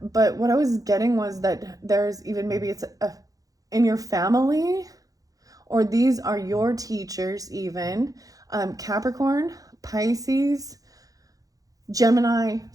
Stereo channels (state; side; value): late; left; 0.17 ms